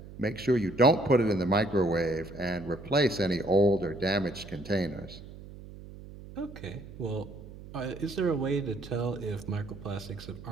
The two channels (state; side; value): noise; right; hum, 16 dB below the sound